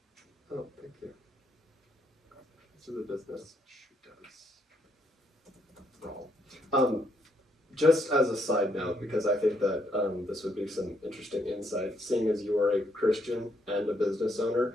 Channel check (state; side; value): normal; both; correlation 0.73